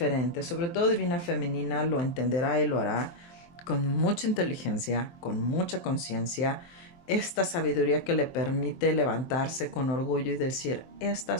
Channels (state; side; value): late; right; 23 ms